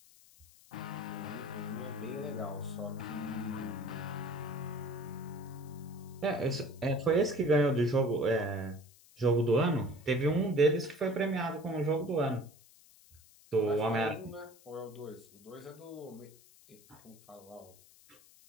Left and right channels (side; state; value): left; noise; hiss, 25 dB below the sound